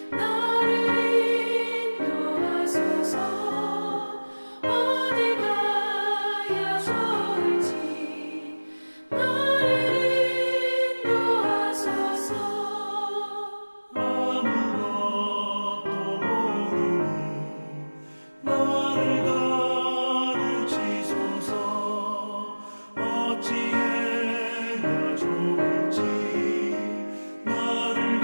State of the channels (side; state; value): both; inverted; correlation -1.00